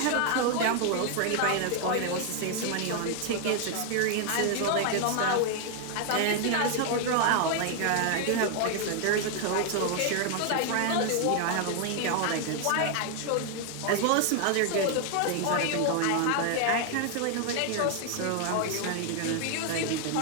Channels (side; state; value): both; different; correlation 0.00